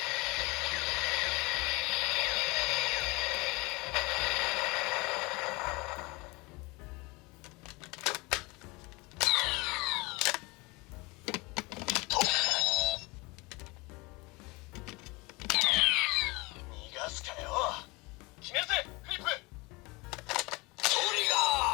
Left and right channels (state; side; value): quieter; right; 25.1 dB